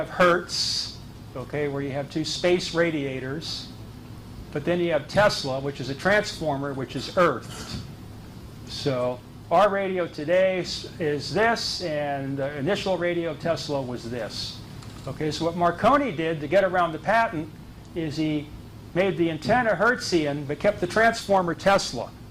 Hertz, okay, where you have 2 space radiators. But then you have Tesla, which is a transformer, which is earthed. So our radio today is this, and the initial radio of Tesla was this. Okay, so what Marconi did to get around the patent is he made the antenna Hertzian but kept the transformer Tesla,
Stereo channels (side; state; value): both; identical; correlation 1.00